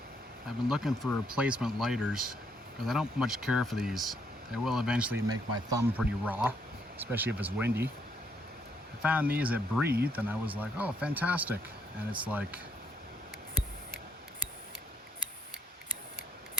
I've been looking for replacement lighters because I don't much care for these. They will eventually make my thumb pretty raw, especially if it's windy. I found these at Breathe and I was like, oh, fantastic. And it's like,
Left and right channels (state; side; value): normal; both; correlation 0.72